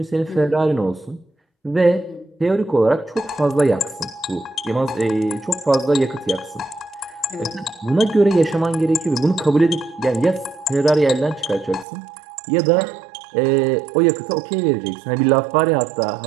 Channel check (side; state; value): left; drops out; at 11.9 s